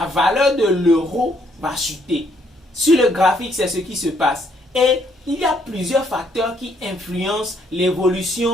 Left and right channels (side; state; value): both; normal; correlation 0.70